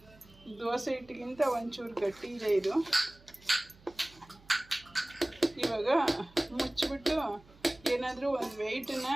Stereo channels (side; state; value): right; noise; hum, 25 dB below the sound